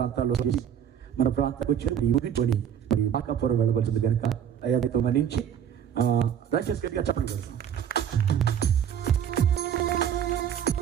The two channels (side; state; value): left; quieter; 9.1 dB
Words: మన ప్రాంతానికి వచ్చి ఊగికొని మరి మాకాపురం వెళ్ళవలసింది కనుక అయ్యాతో మన్నించి దయచేసి గట్టిగా చెప్పండి.